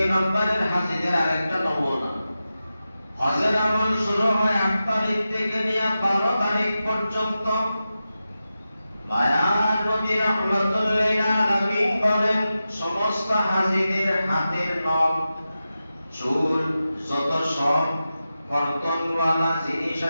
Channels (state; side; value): inverted; both; correlation -0.92